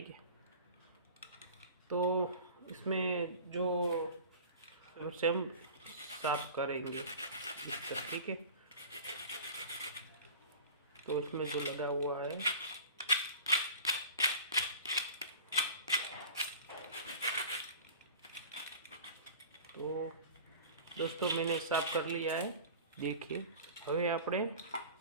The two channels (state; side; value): inverted; both; correlation -0.39